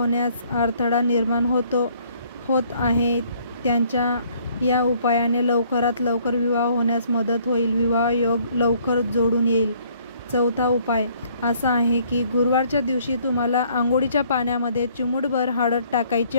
अडथळा निर्माण होत आहे. त्यांच्या या उपायाने लवकरात लवकर विवाह होण्यास मदत होईल. विवाह योग लवकर जोडून येईल. चौथा उपाय असा आहे की गुरुवारच्या दिवशी तुम्हाला अंघोळीच्या पाण्यामध्ये चिमूटभर हळद टाकायची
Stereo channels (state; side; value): inverted; both; correlation -0.63